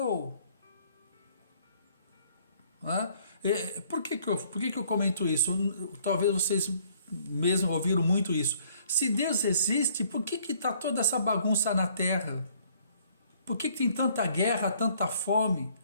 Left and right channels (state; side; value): inverted; both; correlation -0.62